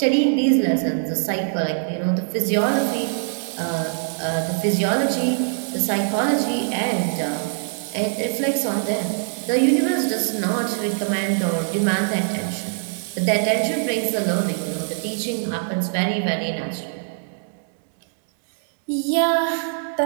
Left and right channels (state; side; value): silent; left; digital silence